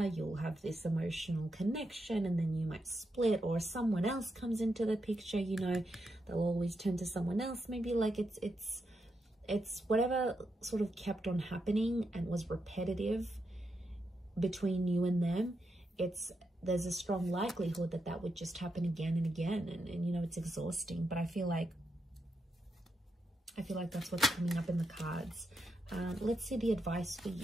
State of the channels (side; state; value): both; normal; correlation 0.84